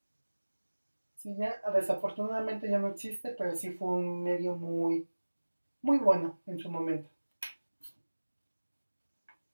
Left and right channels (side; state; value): both; inverted; correlation -1.00